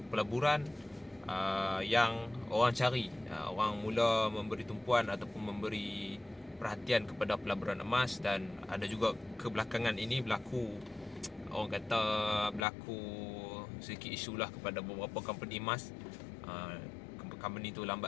pelaburan yang orang cari. Orang mula memberi tumpuan ataupun memberi perhatian kepada pelaburan emas, dan ada juga kebelakangan ini berlaku, orang kata berlaku sedikit isu lah kepada beberapa company emas. Company tu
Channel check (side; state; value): right; drops out; at 12.7 s